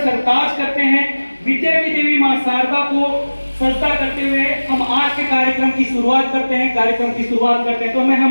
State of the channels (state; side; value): inverted; both; correlation -1.00